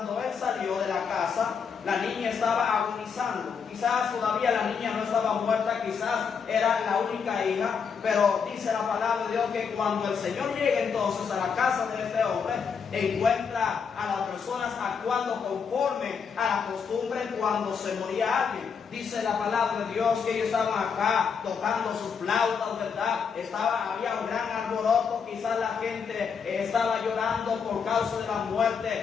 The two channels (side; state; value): right; quieter; 6.3 dB